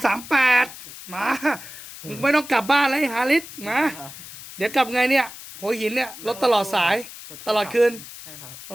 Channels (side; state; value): left; noise; hiss, 14 dB below the sound